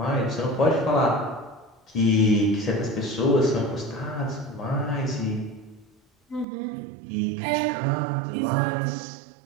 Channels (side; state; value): left; drops out; at 6.5 s